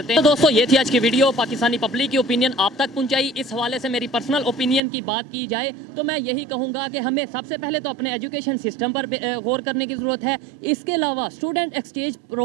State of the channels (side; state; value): left; drops out; at 4.8 s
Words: हैं। तो दोस्तों ये थी आज की वीडियो, पाकिस्तानी पब्लिक की ओपिनियन आप तक पहुंचाई। इस हवाले से मेरी पर्सनल ओपिनियन की बात की जाए तो मैं यही कहूँगा कि हमें सबसे पहले तो अपने एजुकेशन सिस्टम पर गौर करने की ज़रूरत है। इसके अलावा स्टूडेंट एक्सचेंज